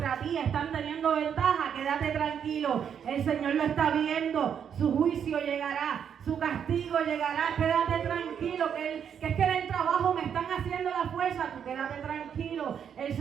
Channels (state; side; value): quieter; left; 8.0 dB